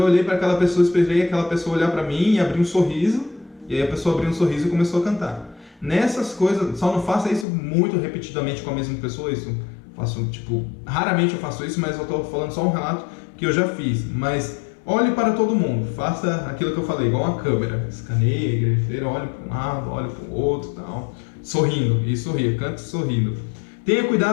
olhei para aquela pessoa, esperei aquela pessoa olhar para mim e abrir um sorriso, e aí a pessoa abriu um sorriso e começou a cantar. Nessas coisas, só não faça isso muito repetidamente com a mesma pessoa, isso faço, raramente eu faço isso, mas eu estou falando só um relato que eu já fiz. Mas olhe para todo mundo, faça aquilo que eu falei, igual uma câmera, escaneie a igreja inteira, olhe para um lado, olhe para o outro, tal. Sorrindo, e sorria, cante sorrindo. Tenha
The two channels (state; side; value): drops out; right; at 7.5 s